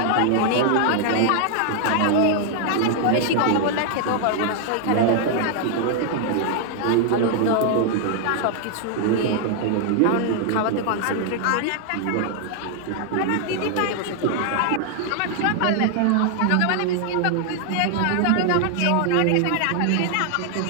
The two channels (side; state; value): both; different; correlation 0.00